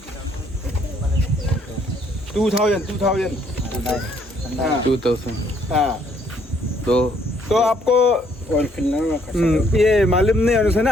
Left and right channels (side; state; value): both; normal; correlation 0.66